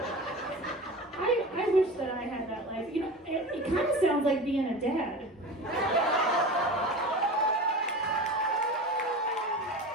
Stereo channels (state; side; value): normal; both; correlation 0.32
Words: I wish that I had that life. You know, it kind of sounds like being a dad.